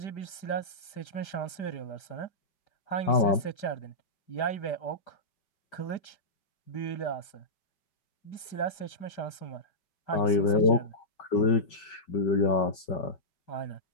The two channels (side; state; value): right; late; 5.0 ms